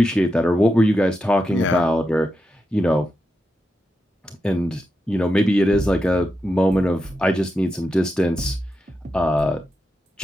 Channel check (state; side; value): normal; both; correlation 0.87